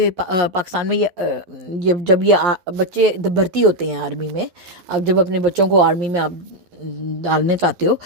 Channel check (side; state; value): left; late; 12 ms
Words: پاکستان میں جب یہ بچے بھرتی ہوتے ہیں آرمی میں، آپ جب اپنے بچوں کو آرمی میں آپ ڈالنے چاہتے ہو